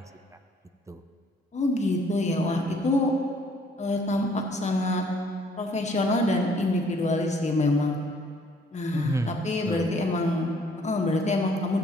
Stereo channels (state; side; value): normal; both; correlation 0.62